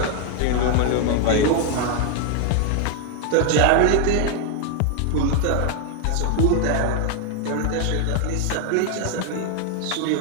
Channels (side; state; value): both; different; correlation 0.00